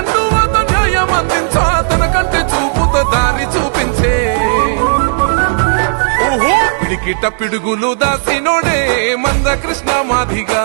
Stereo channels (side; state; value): left; silent; digital silence